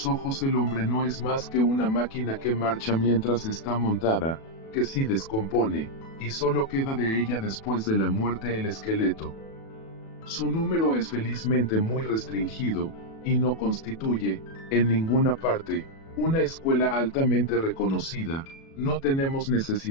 ojos el hombre no es más que una máquina que marcha mientras está montada, que si descompone, y solo queda de ella después de la muerte el esqueleto. Su número es felizmente muy restringido, y no constituye, en ninguna parte, una escuela altamente reconocida. No tenemos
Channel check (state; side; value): late; right; 37 ms